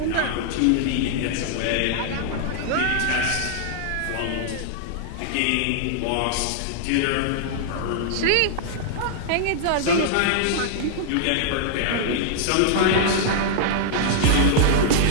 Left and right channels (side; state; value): both; different; correlation -0.01